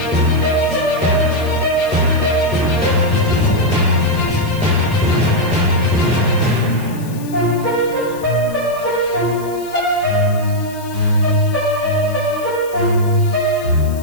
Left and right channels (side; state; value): left; noise; hiss, 19 dB below the sound